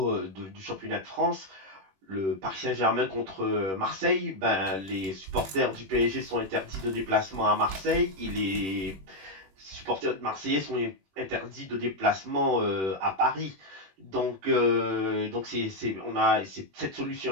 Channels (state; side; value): late; left; 21 ms